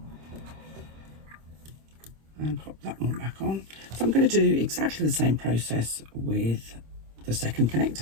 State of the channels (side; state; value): left; late; 26 ms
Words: And pop that one back on. So I'm going to do exactly the same process with the second